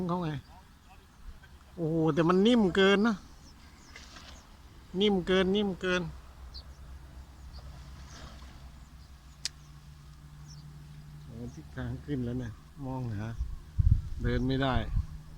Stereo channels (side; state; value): both; identical; correlation 1.00